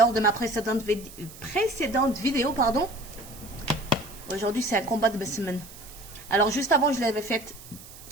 de ma précédente vidéo, pardon, aujourd'hui c'est un combat de semaine. Alors juste avant, je l'avais faite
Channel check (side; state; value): right; noise; hiss, 18 dB below the sound